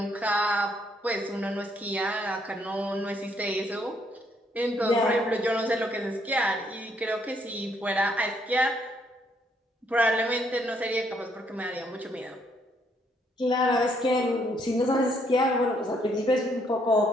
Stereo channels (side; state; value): both; normal; correlation 0.70